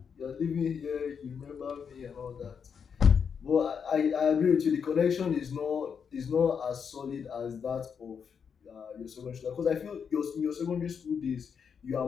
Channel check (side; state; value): right; quieter; 6.7 dB